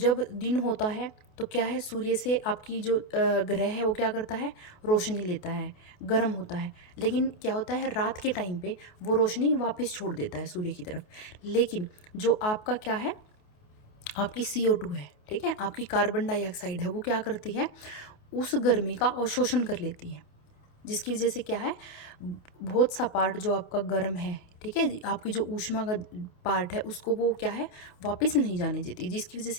दिन होता है तो क्या है, सूर्य से आपकी जो ग्रह है वो क्या करता है, रोशनी लेता है, गर्म होता है, लेकिन क्या होता है रात के टाइम पे वो रोशनी वापस छोड़ देता है सूर्य की तरफ। लेकिन जो आपका क्या है, आपकी CO2 है, ठीक है, आपकी कार्बन डाइऑक्साइड है, वो क्या करती है, उस गर्मी का अवशोषण कर लेती है, जिसकी वजह से क्या है, बहुत सा पार्ट जो आपका गर्म है, ठीक है, आपकी जो ऊष्मा का पार्ट है उसको वो क्या है, वापस नहीं जाने देती, जिसकी वजह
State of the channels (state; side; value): late; right; 28 ms